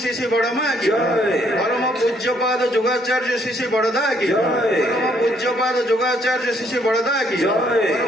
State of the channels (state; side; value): normal; both; correlation 0.68